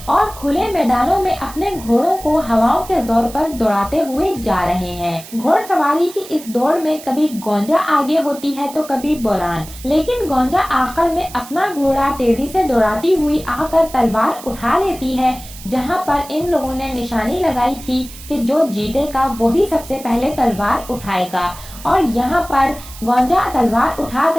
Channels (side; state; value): right; noise; hiss, 16 dB below the sound